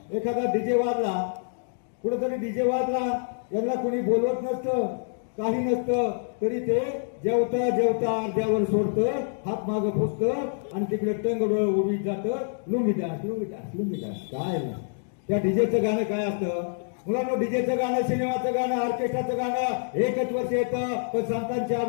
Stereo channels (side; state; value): right; silent; digital silence